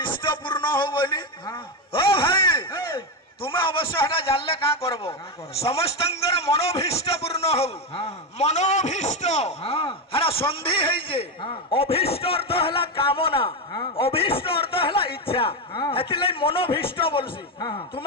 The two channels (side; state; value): both; normal; correlation 0.11